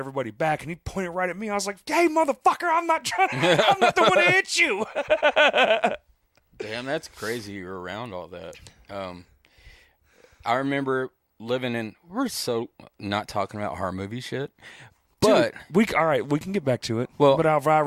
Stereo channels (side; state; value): both; identical; correlation 1.00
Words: back. And he pointed right at me. I was like, hey, motherfucker, I'm not the one to hit you. Damn, that's crazy you're around all that. I remember living in, we're so not talking about horror movie shit, but Dude, all right, we can get back to it. Well- but